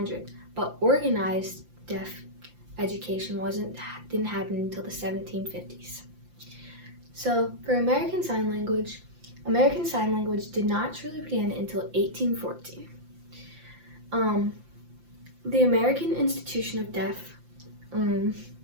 but organized deaf education didn't happen until the 1750s. So for American Sign Language did not truly begin until 1814. The American Institution of Deaf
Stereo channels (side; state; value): left; late; 5.8 ms